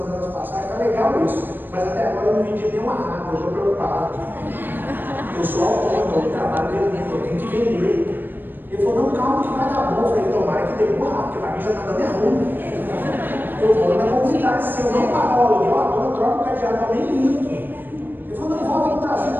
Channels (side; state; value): left; late; 0.093 ms